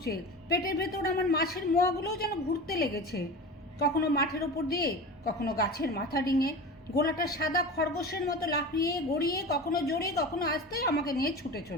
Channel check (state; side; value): normal; both; correlation 0.31